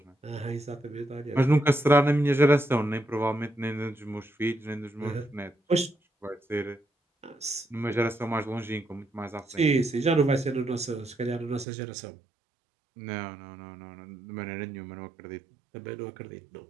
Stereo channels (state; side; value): drops out; left; at 11.7 s